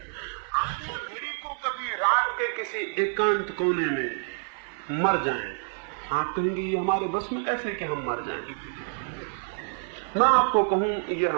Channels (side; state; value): left; silent; 60 dB below the other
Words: आप घड़ी को कभी रात के किसी एकांत कोने में मर जाएं, आप कहेंगे ये हमारे बस में कैसे कि हम मर जाएं। मैं आपको कहूं ये